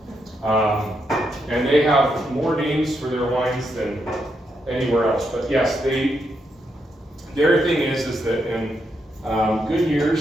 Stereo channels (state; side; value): normal; both; correlation 0.81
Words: And they have more names for their wines than anywhere else. But yes, their thing is that in good